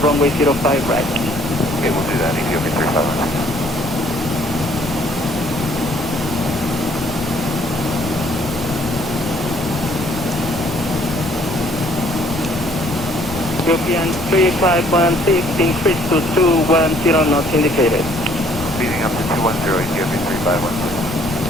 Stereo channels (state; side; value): noise; left; rumble, 17 dB below the sound